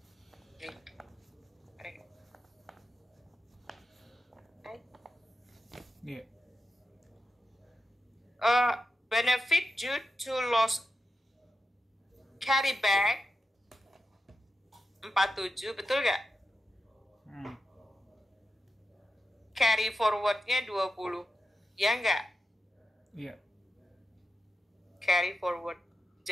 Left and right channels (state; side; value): normal; both; correlation 0.89